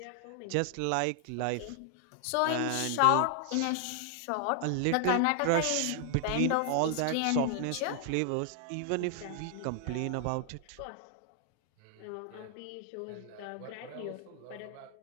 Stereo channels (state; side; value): different; both; correlation 0.00